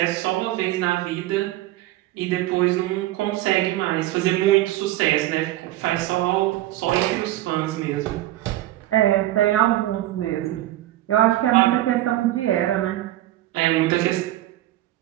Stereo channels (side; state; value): left; quieter; 15.2 dB